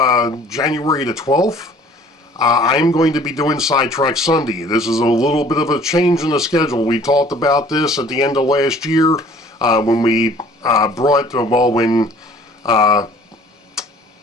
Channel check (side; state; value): both; normal; correlation 0.52